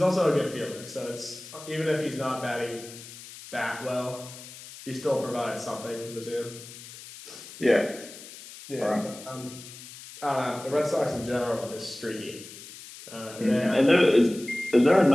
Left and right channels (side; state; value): left; noise; hiss, 15 dB below the sound